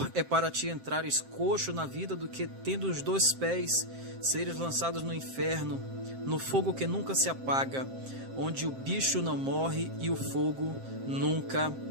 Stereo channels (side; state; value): left; late; 7.6 ms